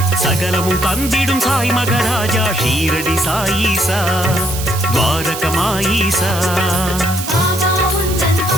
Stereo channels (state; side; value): noise; right; hiss, 8 dB below the sound